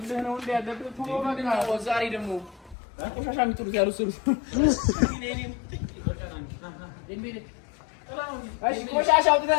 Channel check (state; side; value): drops out; right; at 2.8 s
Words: ነው እንደ ያለብህ ቶሎ በቃ ዛሬ ደግሞ ቆሻሻ የሚጥሉት ያሉ ስሩ ቆሻሻ